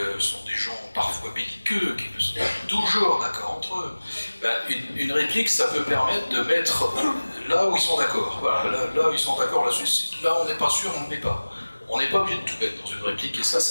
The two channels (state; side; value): inverted; both; correlation -1.00